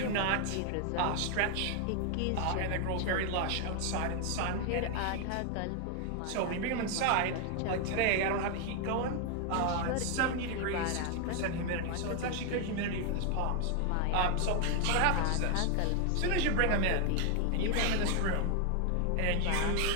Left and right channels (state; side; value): different; both; correlation 0.00